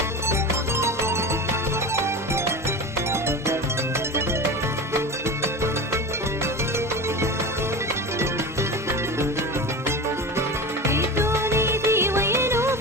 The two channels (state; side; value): normal; both; correlation 0.28